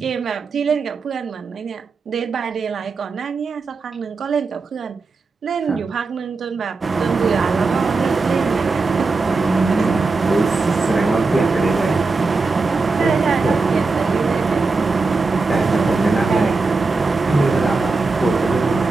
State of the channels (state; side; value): quieter; left; 4.0 dB